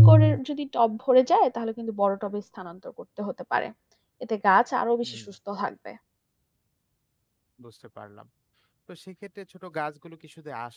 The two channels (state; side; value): identical; both; correlation 1.00